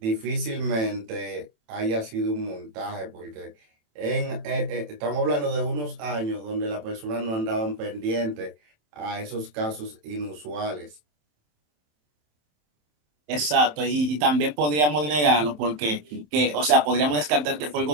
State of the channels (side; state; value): left; late; 27 ms